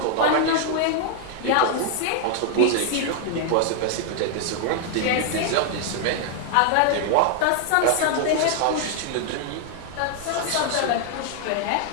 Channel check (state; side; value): different; both; correlation 0.00